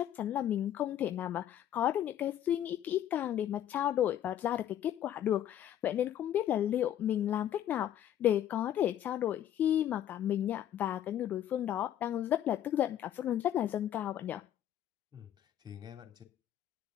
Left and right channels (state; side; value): quieter; right; 11.1 dB